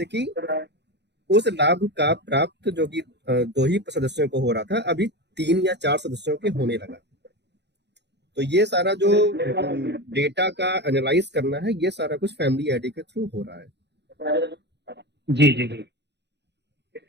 कि उस लाभ का प्राप्त जो कि 2 ही सदस्यों को हो रहा था, अभी 3 या 4 सदस्यों के होने लगा। तो ये सारा जो डेटा का एनालाइज करना है, ये सारा कुछ फैमिली आईडी के थ्रू हो रहा है। जी जी जी,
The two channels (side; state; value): left; late; 0.50 ms